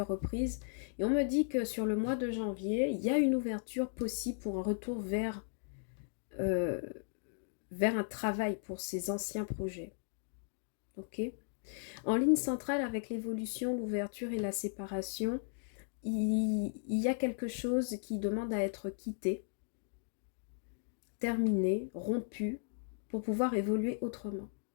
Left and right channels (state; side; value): silent; right; digital silence